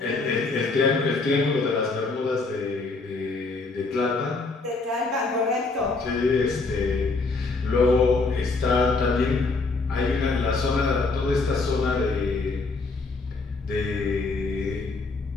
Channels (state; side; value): quieter; right; 3.8 dB